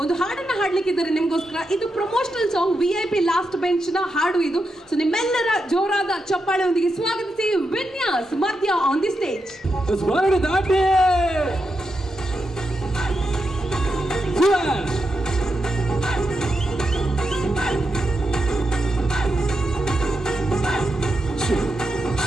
ಒಂದು ಹಾಡನ್ನ ಹಾಡ್ಲಿಕ್ಕಿದ್ದಾರೆ ನಿಮ್ಗೋಸ್ಕರ. ಇದು promotional song VIP last bench ನ ಹಾಡು ಇದು. ಸೊ ನಿಮ್ಮೆಲ್ಲರ ಜೋರಾದ ಚಪ್ಪಾಳೆಯೊಂದಿಗೆ ಸ್ವಾಗತಿಸಿ ವಿನ್ಯಾಸ್ ಮಧ್ಯ ಆನ್ ದಿ ಸ್ಟೇಜ್.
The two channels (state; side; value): normal; both; correlation 0.86